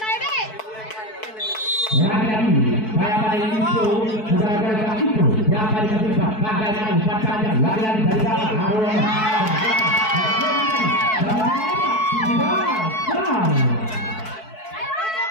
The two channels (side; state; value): right; late; 4.6 ms